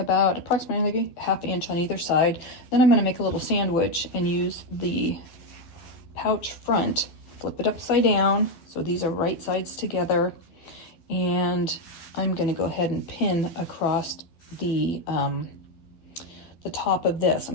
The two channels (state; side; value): late; right; 12 ms